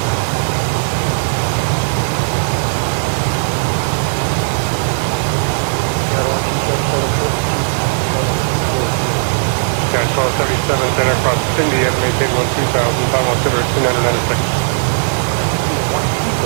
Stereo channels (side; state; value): left; silent; digital silence